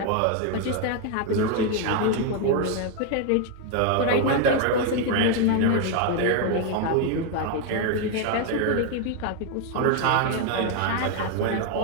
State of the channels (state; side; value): different; both; correlation 0.01